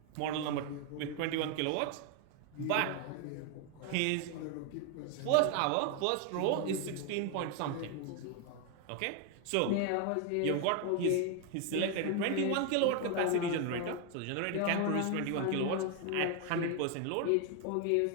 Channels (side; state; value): both; different; correlation 0.01